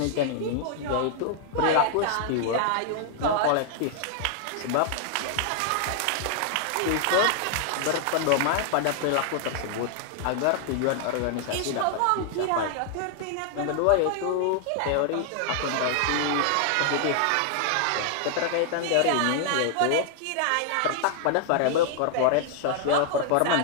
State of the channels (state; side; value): different; both; correlation 0.00